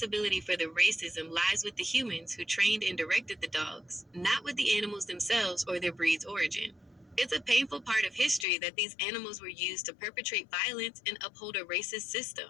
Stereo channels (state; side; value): drops out; right; at 8.5 s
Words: for the racism lies with the humans who trained and directed the dogs, not with the animals themselves or their breed's origin. It's a painful part of history that these animals were used to perpetrate violence and uphold a racist system.